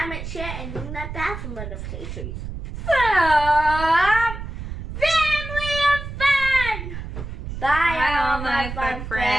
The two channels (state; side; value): noise; right; rumble, 8 dB below the sound